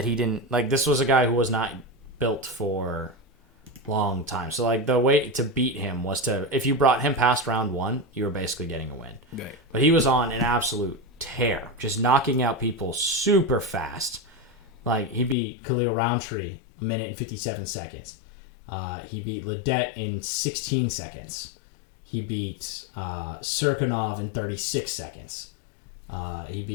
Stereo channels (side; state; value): right; drops out; at 15.4 s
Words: he didn't, like, this was a guy who was not built for long time. So like the way to beat him was to, if you brought him past round one, you were basically getting a win. Right. But he was on an absolute tear, just knocking out people super fast. Like he beat Khalil Roundtree a minute and 57 seconds. He beat Ledet in 16 seconds. He beat Serkinov in 36 seconds. He